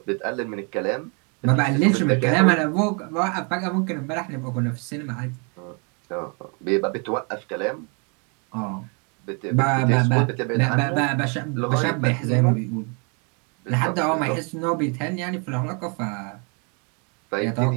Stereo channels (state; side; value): quieter; left; 35.4 dB